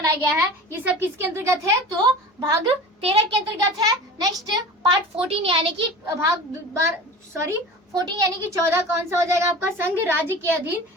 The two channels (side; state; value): both; normal; correlation 0.36